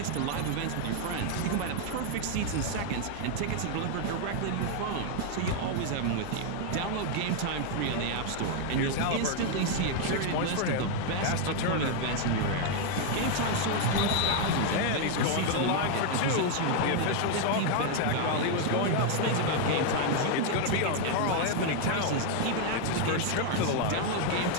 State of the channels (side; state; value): both; different; correlation 0.00